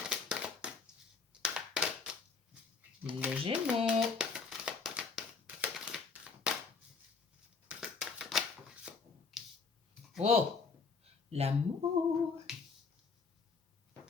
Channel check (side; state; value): right; quieter; 4.8 dB